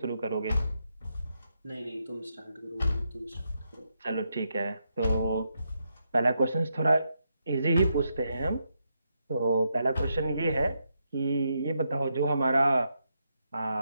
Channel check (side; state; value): both; inverted; correlation -0.82